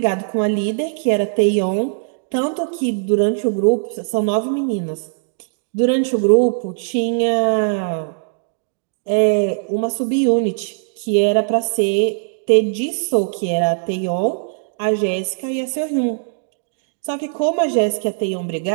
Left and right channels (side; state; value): left; silent; digital silence